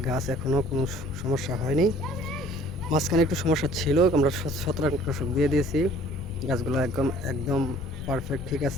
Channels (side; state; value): left; noise; rumble, 10 dB below the sound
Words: গাছ এখনও কোনো সমস্যা হয়নি। মাঝখানে একটু সমস্যা ছিল, আমরা ছত্রাকনাশক দিয়ে দিয়েছি। গাছগুলো একদম একদম পারফেক্ট ঠিক